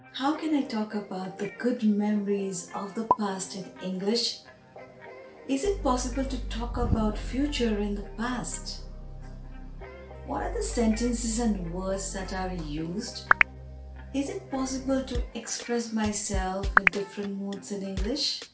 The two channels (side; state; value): both; identical; correlation 1.00